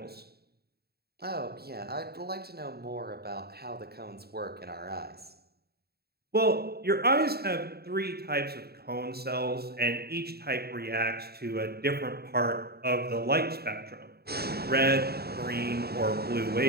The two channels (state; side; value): late; left; 0.46 ms